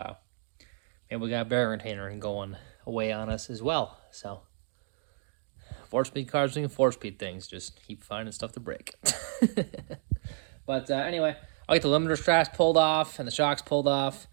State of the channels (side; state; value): left; silent; digital silence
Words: maybe we got a bearing retainer going away on us as well. So 4-speed cars doing 4-speed things. Just keep finding stuff to break. But anyway, I'll get the limiter straps pulled off and the shocks pulled off.